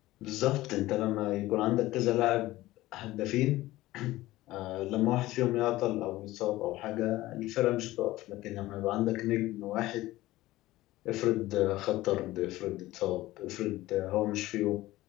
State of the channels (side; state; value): right; quieter; 17.2 dB